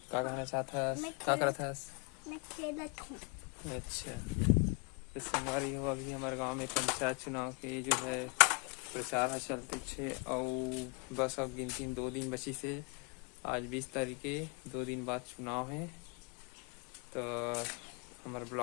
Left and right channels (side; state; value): right; quieter; 34.3 dB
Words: क्या कहना चाहता है, क्या करता है? मैं खेलत हूँ। अच्छा तो संगवारी हो, अभी हमारे गांव में पंचायत चुनाव के जो है प्रचार है चलते छे और बस अब गिनती 2 दिन बची से। आज 20 तारीख के 2 दिन बाद चुनाव है, तो हमारे